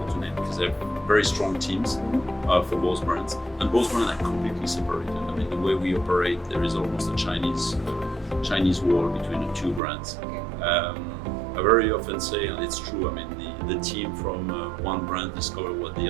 because they have very strong teams for both brands, and both brands are completely separated. The way we operate, there is almost a Chinese wall between the two brands. I very often say, and it's true, the team from one brand discover what the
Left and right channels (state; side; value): drops out; left; at 9.8 s